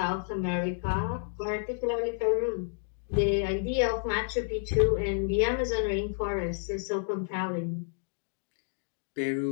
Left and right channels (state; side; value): silent; right; digital silence